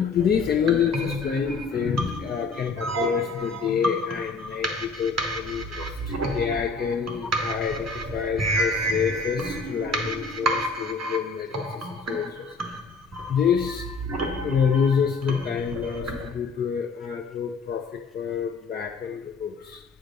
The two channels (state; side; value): quieter; right; 4.3 dB